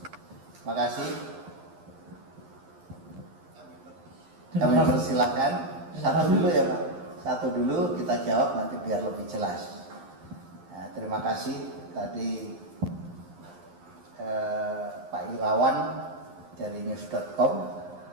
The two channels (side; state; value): left; late; 11 ms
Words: makasih. Kami persilahkan. Satu dulu ya Pak. Satu dulu kita jawab nanti biar lebih jelas. Nah, terima kasih tadi Pak Irawan dari news.com